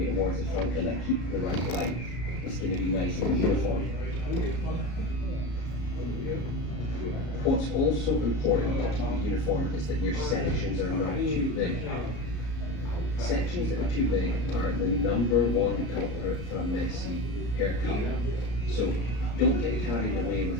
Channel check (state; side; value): late; right; 33 ms